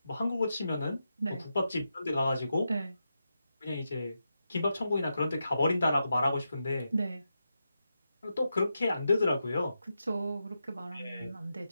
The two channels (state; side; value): inverted; both; correlation -0.87